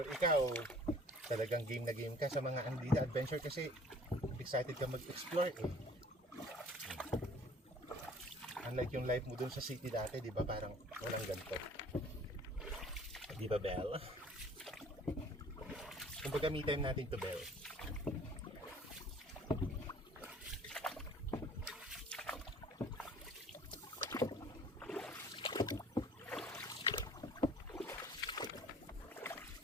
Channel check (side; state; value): both; normal; correlation 0.52